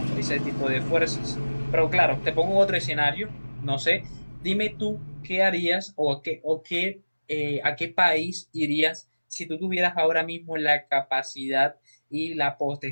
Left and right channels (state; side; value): inverted; both; correlation -1.00